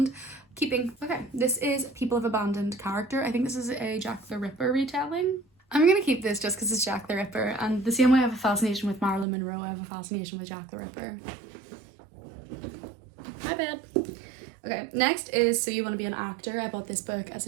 Keeping. Okay, this is People of Abandoned Character. I think this is a Jack the Ripper retelling. I'm gonna keep this just because it's Jack the Ripper, and the same way I have a fascination with Marilyn Monroe, I have a fascination with Jack the Ripper. My bad. Okay, next is So You Want to Be an Actor. I bought this book as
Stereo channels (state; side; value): drops out; left; at 9.2 s